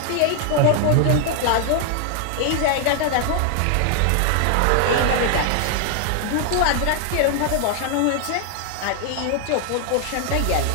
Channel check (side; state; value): both; different; correlation 0.00